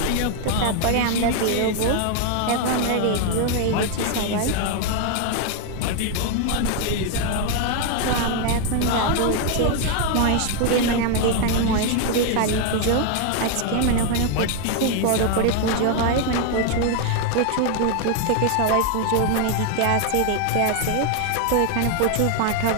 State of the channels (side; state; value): both; different; correlation 0.00